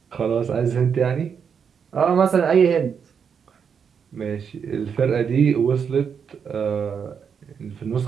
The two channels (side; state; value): left; quieter; 6.9 dB